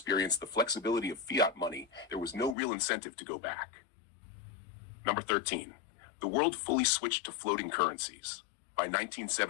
the flexibility of fiat money, there was no real incentive to go back. Number 13. The world fully switched to floating currencies. By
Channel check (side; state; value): right; drops out; at 2.6 s